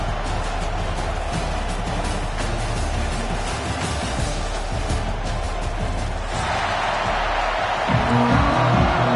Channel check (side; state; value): both; identical; correlation 1.00